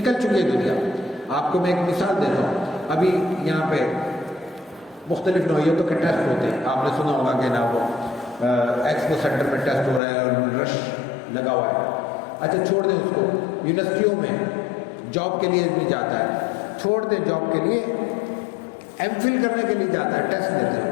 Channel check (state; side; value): drops out; right; at 10.0 s